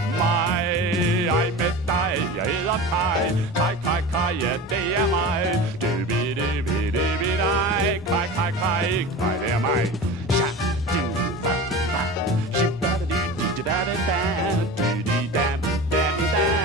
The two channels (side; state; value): both; normal; correlation 0.32